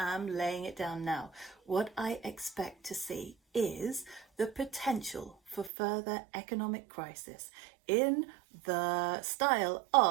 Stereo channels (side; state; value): left; drops out; at 5.7 s